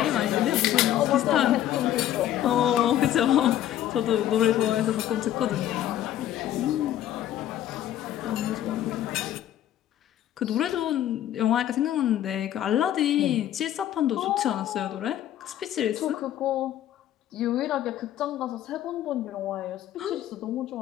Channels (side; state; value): right; quieter; 12.0 dB